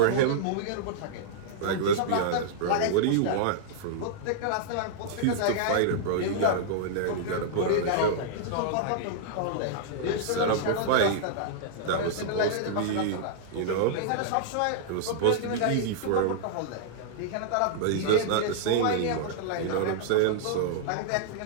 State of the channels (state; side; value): different; both; correlation -0.02